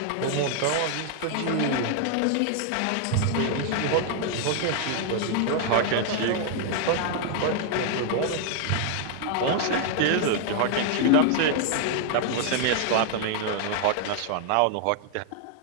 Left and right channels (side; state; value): both; different; correlation 0.00